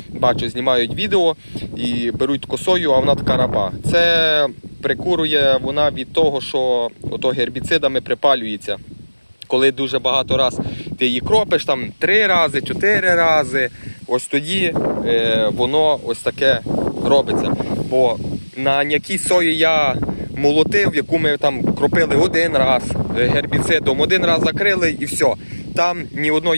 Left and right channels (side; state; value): both; inverted; correlation -1.00